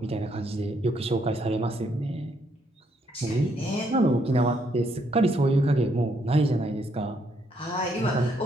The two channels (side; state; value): both; normal; correlation 0.73